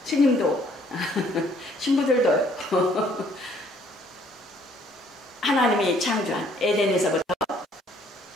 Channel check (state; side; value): normal; both; correlation 0.62